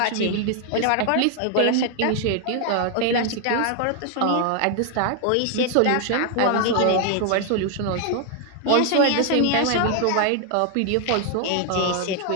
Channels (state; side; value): different; both; correlation 0.00